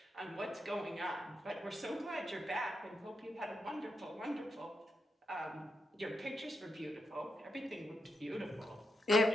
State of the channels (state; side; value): normal; both; correlation 0.85